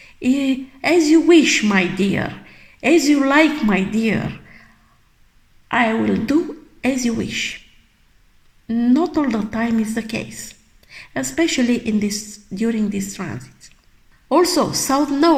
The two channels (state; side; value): identical; both; correlation 1.00